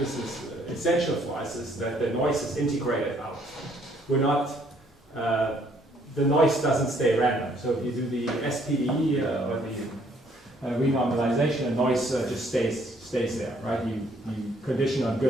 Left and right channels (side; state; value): both; normal; correlation 0.65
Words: is essential for us, is that the noise is integrated out. We're not, the noise doesn't stay random. So if you do the SPDE or the renormalization, the noise just stays there, right? You condition on